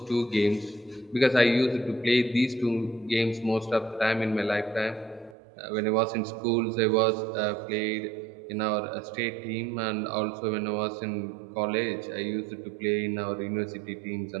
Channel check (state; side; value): drops out; left; at 5.4 s